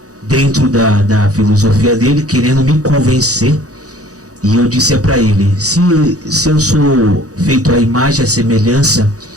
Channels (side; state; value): left; late; 0.66 ms